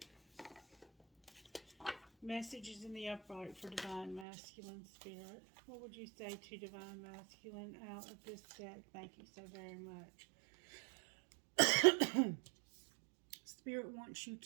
Messages in the upright for Divine Masculine Spirit. What would you say to Divine Masculine out of this deck? Thank you so very much. Spirit wants you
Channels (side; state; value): left; drops out; at 4.2 s